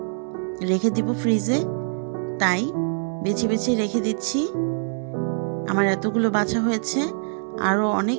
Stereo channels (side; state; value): left; silent; 63 dB below the other